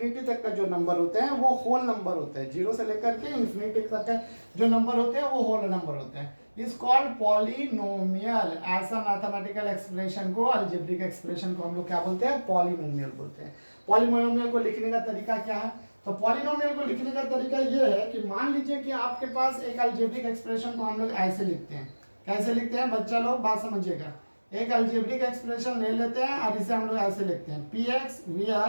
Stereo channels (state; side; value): inverted; both; correlation -1.00